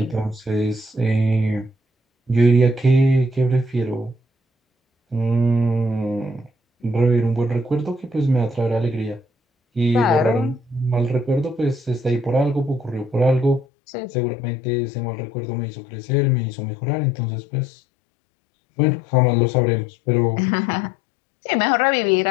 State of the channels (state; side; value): drops out; right; at 13.7 s